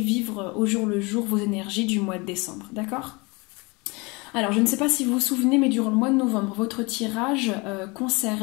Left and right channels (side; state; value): right; quieter; 27.0 dB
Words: au jour le jour vos énergies du mois de décembre, d'accord? Alors, je ne sais pas si vous vous souvenez, mais durant le mois de novembre, votre tirage